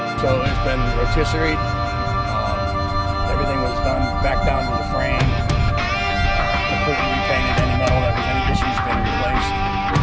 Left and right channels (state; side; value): identical; both; correlation 1.00